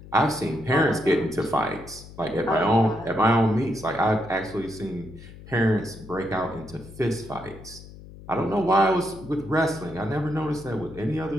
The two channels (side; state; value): left; noise; hum, 17 dB below the sound